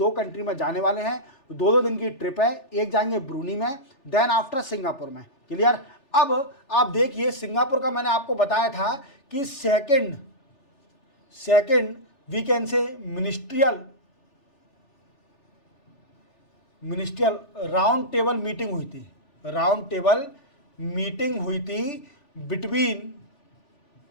कंट्री में जाने वाले हैं। 2 दिन की ट्रिप है, एक जाएंगे ब्रूनी में, देन आफ्टर सिंगापुर में। क्लियर? अब आप देखिए, सिंगापुर का मैंने आपको बताया था कि second we can say ministerial round table meeting हुई थी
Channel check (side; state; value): right; late; 3.5 ms